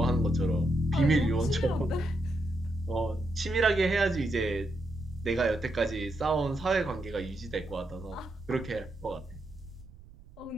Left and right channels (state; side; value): noise; right; rumble, 20 dB below the sound